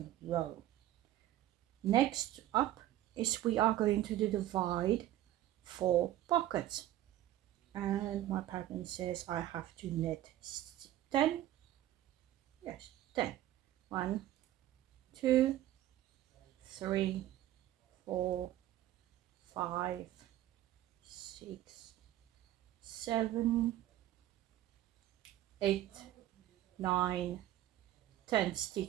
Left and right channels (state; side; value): quieter; left; 13.6 dB